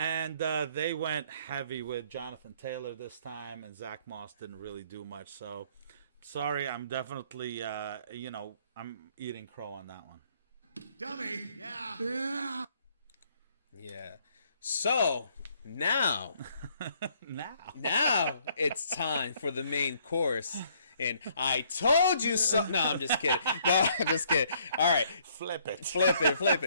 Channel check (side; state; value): both; inverted; correlation -0.65